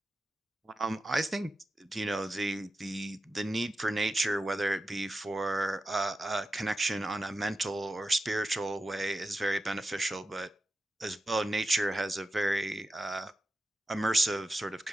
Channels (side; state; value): both; normal; correlation 0.91